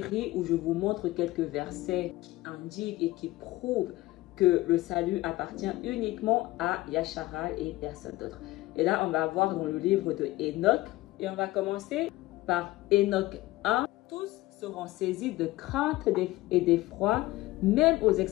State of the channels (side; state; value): right; quieter; 18.4 dB